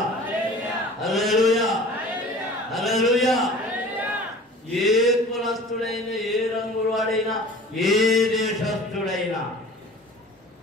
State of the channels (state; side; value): normal; both; correlation 0.43